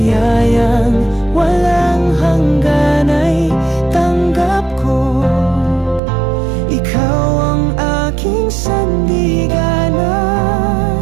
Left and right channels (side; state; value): left; drops out; at 6.0 s